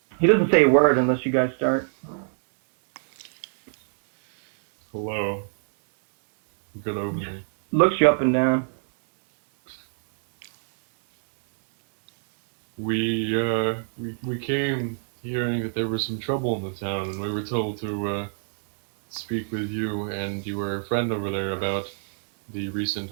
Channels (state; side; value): silent; left; digital silence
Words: He doesn't say a word unless you guys start. Hello. Good evening. Looks you up and down. We came hearing that there was some trouble in the town, and we were told to speak with you and your friend over there about the recent